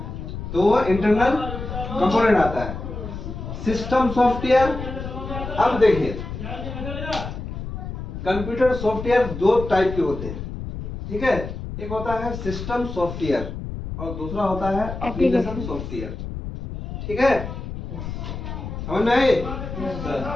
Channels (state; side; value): noise; left; rumble, 7 dB below the sound